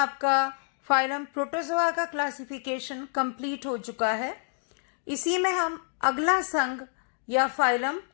फाइलम प्रोटोजोआ का क्लासिफिकेशन कंप्लीट हो चुका है। इसी में हम अगला संघ या फाइलम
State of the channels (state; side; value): silent; right; digital silence